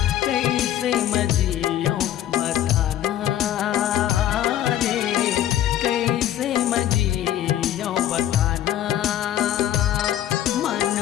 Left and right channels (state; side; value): quieter; right; 11.9 dB